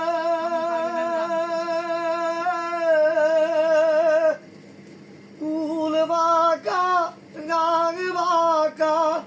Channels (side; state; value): both; identical; correlation 1.00